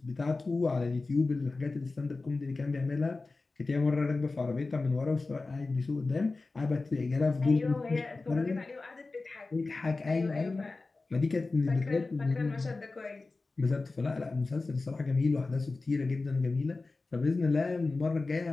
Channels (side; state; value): right; quieter; 3.6 dB